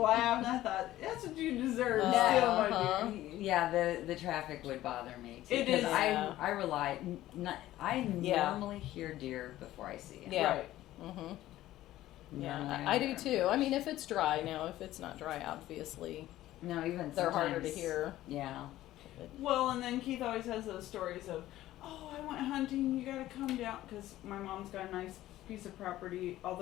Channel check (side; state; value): right; quieter; 14.8 dB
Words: and I thought, that's what you deserve. Steal my deer. Yeah, the traffic would bother me too. It is. I rely. I normally hear deer before I see them. Yeah. Right. Yeah, I do too. I mean, if it's dry now, if it's not dry, obviously. No, even they're harder to sometimes- hear. Yeah. Well, and then Keith always has those stories of, oh, I went hunting, you gotta come down, because my mom's got a nice piece of property,